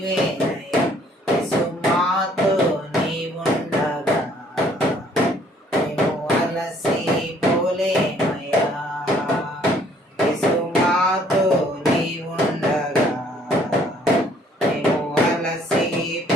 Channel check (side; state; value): both; normal; correlation 0.61